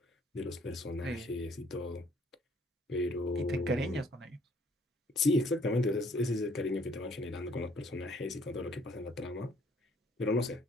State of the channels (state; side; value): normal; both; correlation 0.62